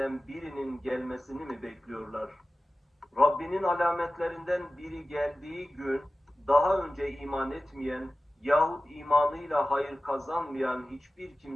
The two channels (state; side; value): normal; both; correlation 0.95